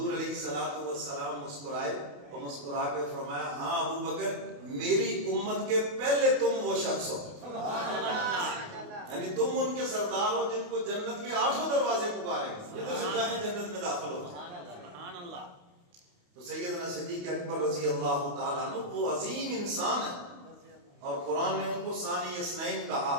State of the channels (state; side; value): late; left; 28 ms